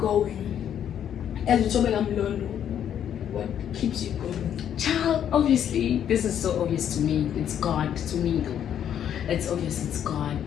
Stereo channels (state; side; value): quieter; right; 9.6 dB